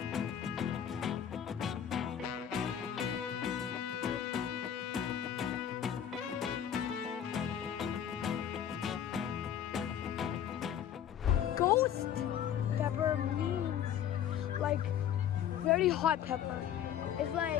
Ghost pepper means like very hot pepper. It's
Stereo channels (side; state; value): right; quieter; 9.6 dB